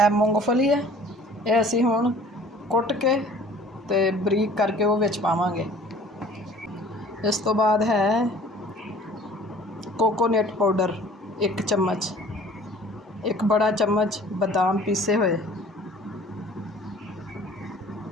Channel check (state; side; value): normal; both; correlation 0.50